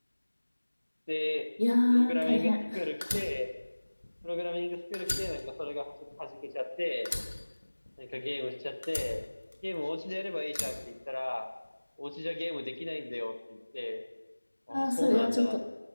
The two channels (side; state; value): both; inverted; correlation -1.00